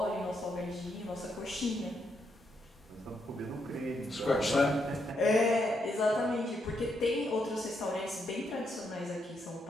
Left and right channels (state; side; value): normal; both; correlation 0.79